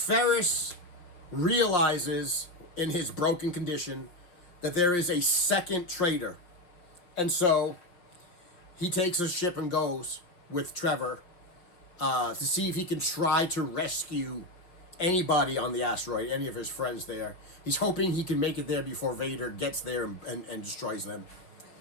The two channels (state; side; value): late; right; 5.4 ms